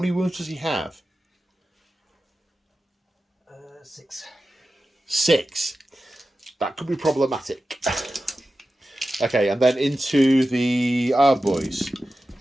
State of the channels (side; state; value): both; normal; correlation 0.93